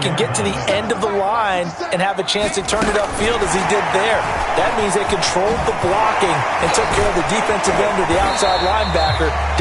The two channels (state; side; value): identical; both; correlation 1.00